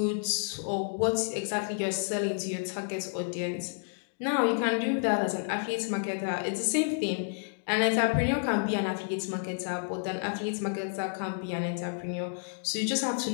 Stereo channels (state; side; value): silent; right; digital silence